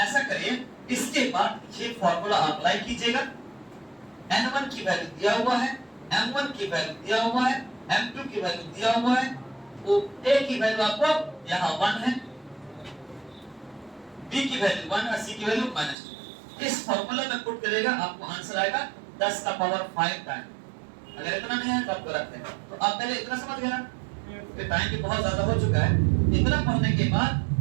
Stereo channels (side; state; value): left; drops out; at 16.0 s